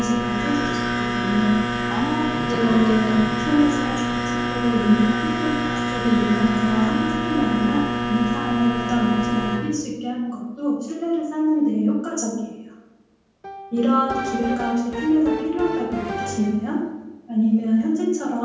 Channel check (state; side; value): identical; both; correlation 1.00